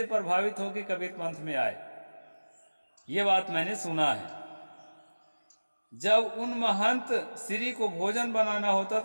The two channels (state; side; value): inverted; both; correlation -1.00